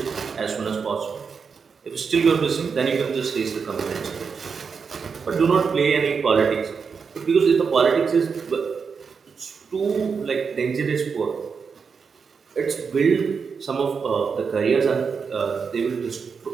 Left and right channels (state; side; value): quieter; left; 5.7 dB